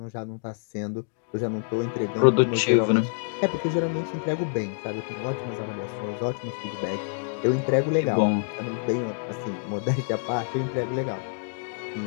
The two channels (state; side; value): silent; right; digital silence